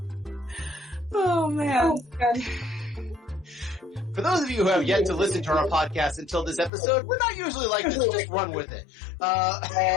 Oh, man. For those of you who have yet to listen to our podcast until this episode, we're not usually like this. Just run with it.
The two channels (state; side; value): drops out; right; at 6.7 s